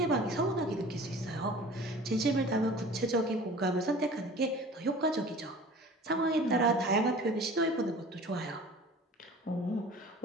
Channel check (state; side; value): normal; both; correlation 0.43